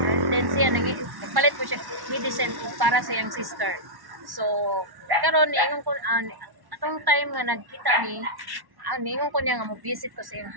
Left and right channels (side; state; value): left; late; 1.1 ms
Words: and then siya nagpalit ko siya medicine para sa iyang sister. So karon niingon ko atong time nga nagkita ni niingon ko niya nga mo visit ko sa iyang